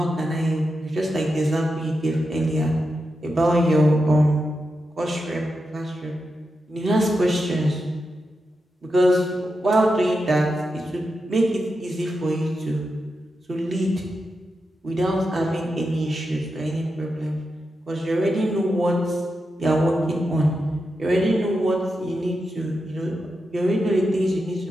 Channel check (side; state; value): both; normal; correlation 0.88